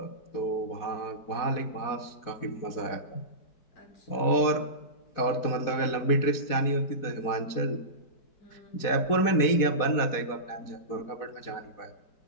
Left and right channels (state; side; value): late; right; 4.2 ms